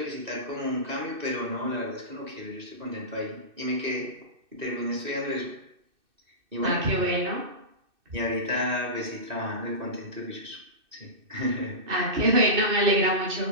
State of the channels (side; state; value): left; late; 2.6 ms